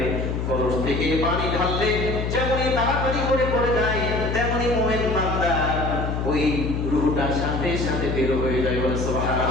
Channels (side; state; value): left; noise; hum, 2 dB below the sound